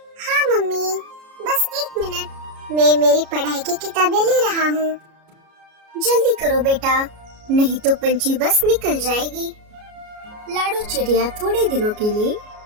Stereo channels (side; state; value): left; late; 33 ms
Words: हाँ मम्मी, बस 1 मिनट, मैं मेरी पढ़ाई की किताबें ले रहा हूँ। जल्दी करो बेटा, नहीं तो पंछी बस निकल जाएगी। लाडू चिड़िया थोड़े दिनों के लिए